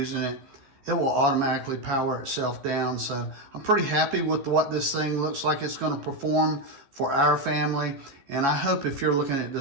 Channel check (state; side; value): late; left; 14 ms